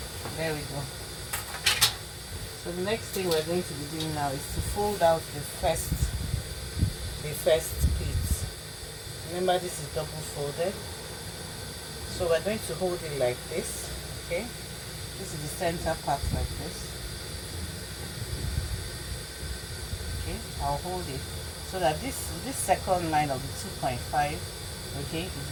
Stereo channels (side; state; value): both; identical; correlation 1.00